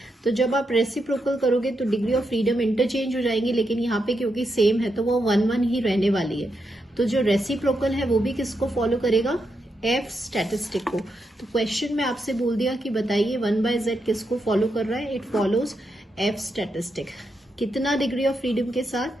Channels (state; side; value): normal; both; correlation 0.84